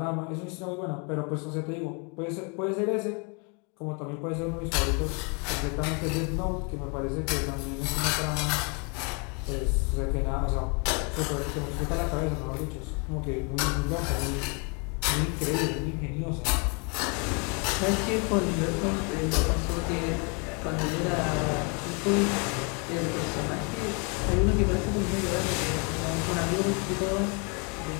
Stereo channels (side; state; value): right; quieter; 34.2 dB